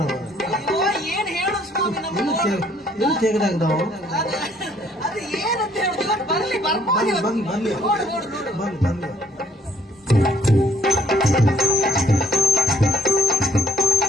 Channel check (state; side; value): normal; both; correlation 0.63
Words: ಅಯ್ಯೋ ಏನ್ ಹೇಳು ಸ್ವಾಮಿ, ನಮ್ಮ ತೆಗೆದಾಗ ನಾವು ಅದು ಏನಂತ ಹೇಳುದು. ಇವತ್ತು ಬರ್ಲಿ, ಬರ್ಬೋದು. ಬರ್ಲಿ ನೋಡು ನೋಡು ನೋಡು. ಬರ್ಲಿ ಬರ್ಲಿ.